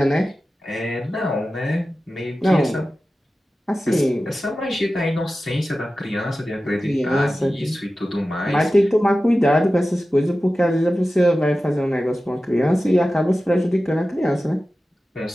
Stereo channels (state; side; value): normal; both; correlation 0.94